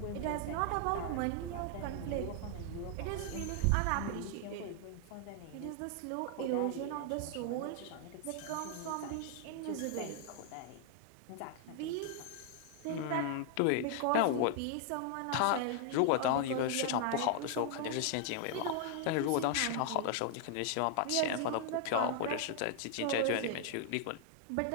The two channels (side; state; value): both; different; correlation 0.00